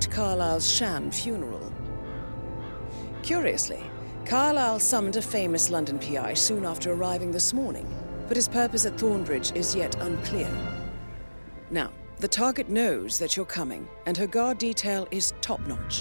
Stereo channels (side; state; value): both; inverted; correlation -1.00